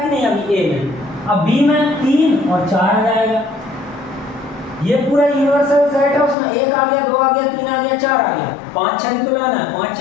नहीं अभी ए में। अब बी में 3 और 4 आ जाएगा। ये पूरा यूनिवर्सल सेट है, उसमें 1 आ गया, 2 आ गया, 3 आ गया, 4 आ गया, 5 6 तो लाना है। 5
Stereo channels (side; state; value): right; drops out; at 6.4 s